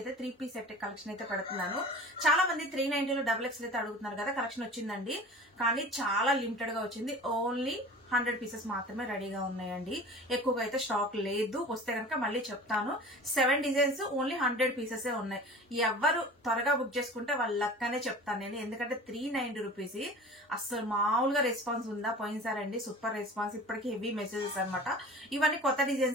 అయితే 3 పీస్ సెట్ కలెక్షన్ అయితే పెడుతున్నాను. చాలా మంది 390లో XXL అయితే అడుగుతున్నారు కదా. కలెక్షన్ వచ్చిందండి, కానీ చాలా లిమిటెడ్ గా వచ్చింది. ఓన్లీ 100 పీసెస్ మాత్రమే రెడీగా ఉన్నాయండి. ఎక్కువగా అయితే స్టాక్ లేదు. వస్తే కనుక మళ్ళీ చెప్తాను. 7 డిజైన్స్, ఓన్లీ 100 పీసెస్ ఉన్నాయి. ఎవరు త్వరగా బుక్ చేసుకుంటే వాళ్ళ లక్కనే చెప్తాను నేను. ఎందుకంటే 390 రూపీస్ అసలు మామూలుగా రెస్పాన్స్ ఉందా? పోయినసారండి సూపర్ రెస్పాన్స్. ఇప్పటికీ హెవీ మెసేజెస్ అనమాట. ఇవన్నీ కొత్త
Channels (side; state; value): both; normal; correlation 0.39